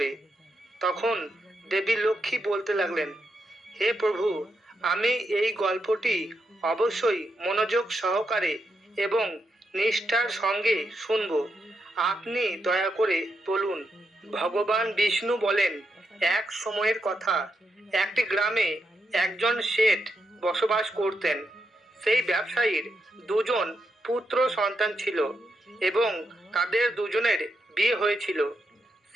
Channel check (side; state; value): both; normal; correlation 0.83